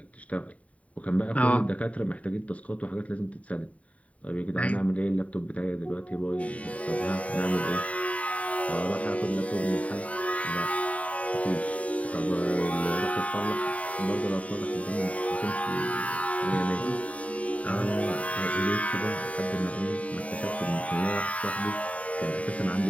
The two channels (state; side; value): late; right; 0.067 ms